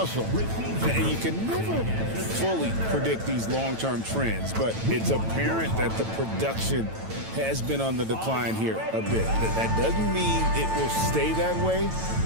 And you can never fully predict these long-term trends, but it's apparent that the production has been on the decline here a bit. That doesn't mean it will stay that way.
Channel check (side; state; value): left; late; 9.0 ms